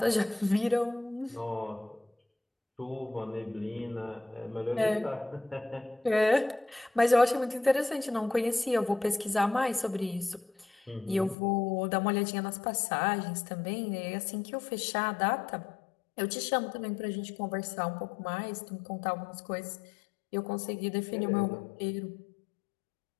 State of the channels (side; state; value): right; drops out; at 11.4 s